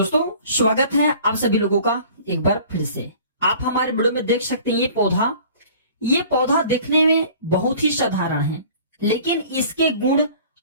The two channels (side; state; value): both; inverted; correlation -0.48